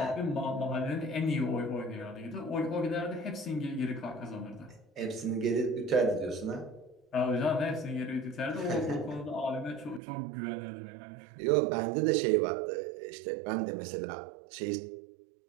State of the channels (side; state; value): left; drops out; at 10.0 s